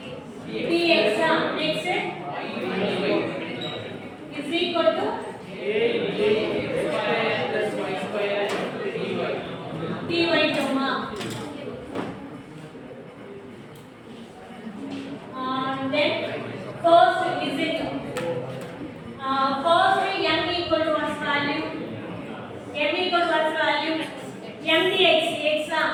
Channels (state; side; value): identical; both; correlation 1.00